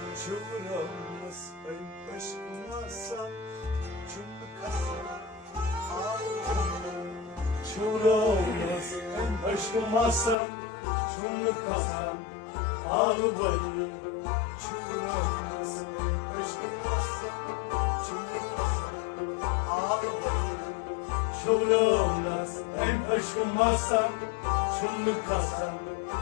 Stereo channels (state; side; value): drops out; right; at 10.4 s